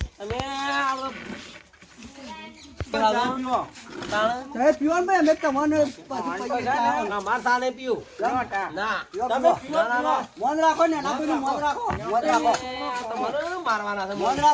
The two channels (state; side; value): identical; both; correlation 1.00